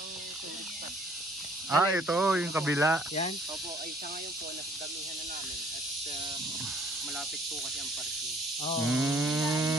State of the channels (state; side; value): normal; both; correlation 0.59